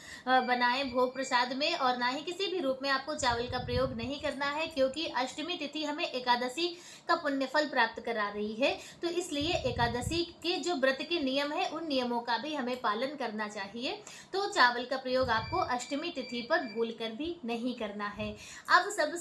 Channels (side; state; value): both; identical; correlation 1.00